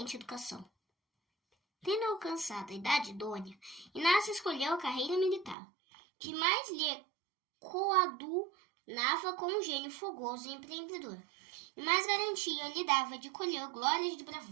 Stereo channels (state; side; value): drops out; left; at 5.6 s